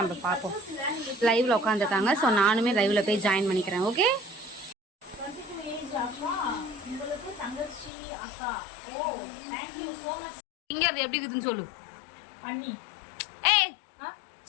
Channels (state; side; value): drops out; right; at 7.9 s